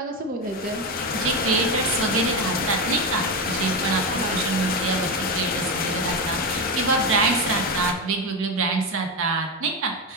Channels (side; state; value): both; normal; correlation 0.13